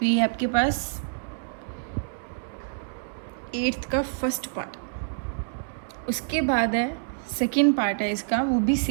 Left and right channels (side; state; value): left; silent; 60 dB below the other